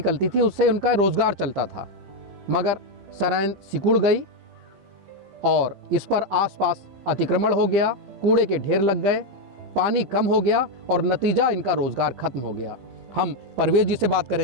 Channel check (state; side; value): late; left; 15 ms